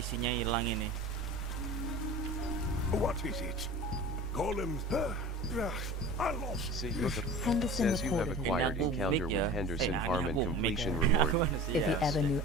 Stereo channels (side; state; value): both; normal; correlation 0.38